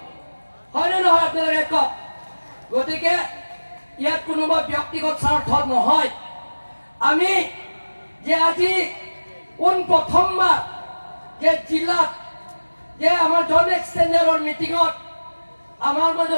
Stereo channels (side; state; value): both; inverted; correlation -1.00